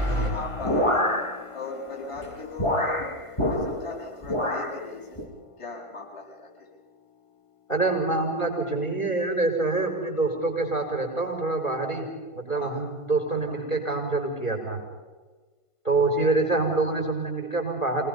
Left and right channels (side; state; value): right; late; 1.5 ms